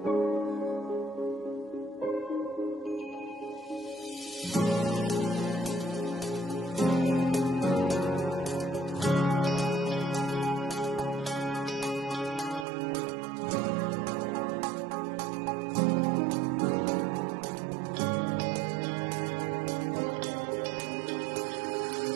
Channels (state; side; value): drops out; left; at 12.7 s